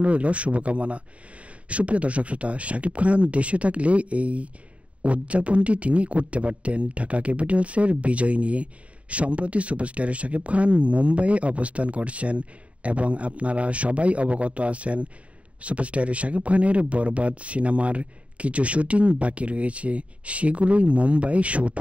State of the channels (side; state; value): left; late; 0.065 ms